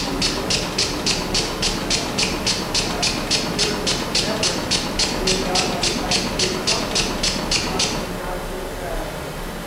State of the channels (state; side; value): identical; both; correlation 1.00